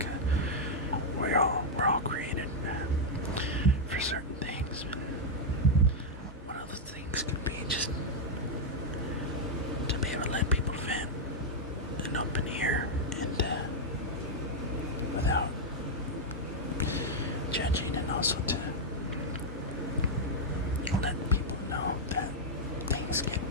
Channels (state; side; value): normal; both; correlation -0.03